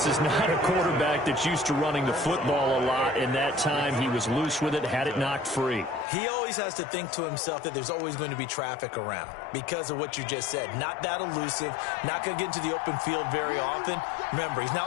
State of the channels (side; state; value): right; drops out; at 6.1 s